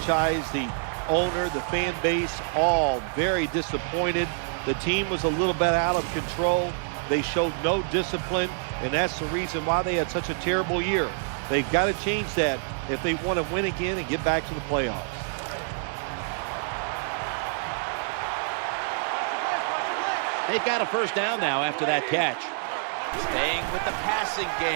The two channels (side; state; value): left; silent; digital silence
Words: the owner, the fan base, all very disappointed. The team was a little bit out of control. They showed no discipline, and that's the reason why they had such a terrible year. They've got to change that if they want to win again and get back to the playoffs. They've got a first down now after that catch. Staying with the passing